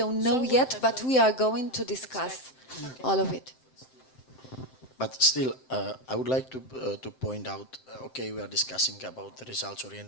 know yet, but we are going to discuss all of it. But still, I would like to point out, okay, we are discussing about the results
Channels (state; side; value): late; right; 7.7 ms